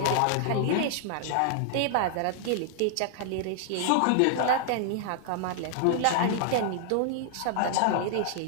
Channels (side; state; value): both; different; correlation -0.01